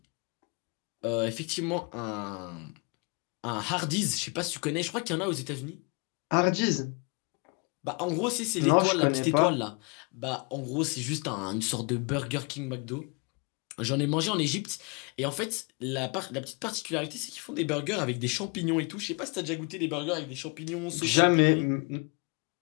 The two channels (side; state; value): right; quieter; 31.9 dB